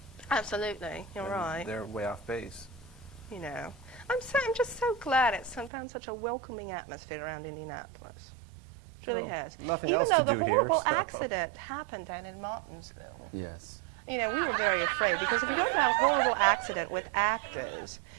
Absolutely, you're and right. They're way off base. I'm just so glad it's found such a welcoming atmosphere around Indianapolis. It really Well, has. nothing Even else though to the do here, horrible so. accident happened down in Martinsville. yes. We were very afraid because if you don't have a horrible accident with actors,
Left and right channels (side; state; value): left; drops out; at 5.7 s